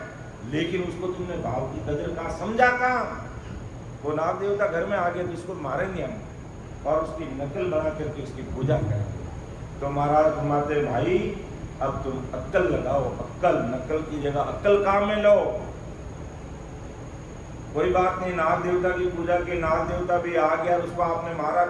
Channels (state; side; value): identical; both; correlation 1.00